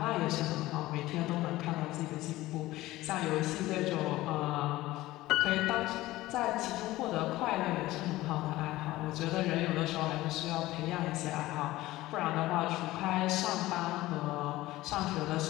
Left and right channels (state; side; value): quieter; right; 17.3 dB